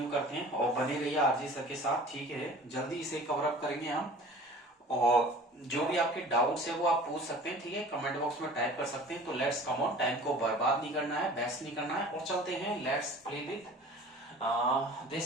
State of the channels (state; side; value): normal; both; correlation 0.43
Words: करते हैं और बने रहिए आरजी सर के साथ, ठीक है। जल्दी इसे कवर अप करेंगे हम। और जो भी आपके डाउट्स है वो आप पूछ सकते हैं, ठीक है, कमेंट बॉक्स में टाइप कर सकते हैं। तो लेट्स कम ऑन, टाइम को बर्बाद नहीं करना है, वेस्ट नहीं करना है, और चलते हैं। Let's play with